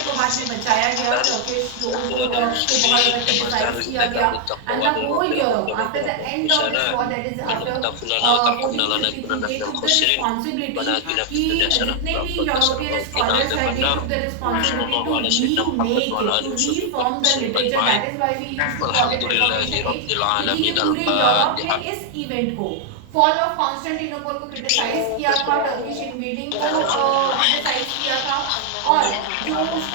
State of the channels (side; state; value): both; different; correlation 0.00